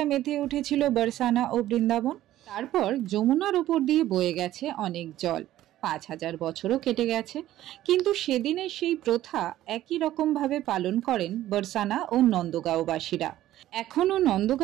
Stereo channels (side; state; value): left; quieter; 13.9 dB